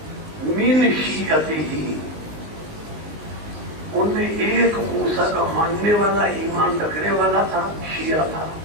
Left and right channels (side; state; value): left; late; 19 ms